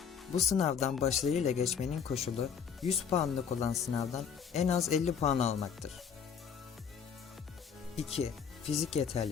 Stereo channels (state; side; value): quieter; right; 7.0 dB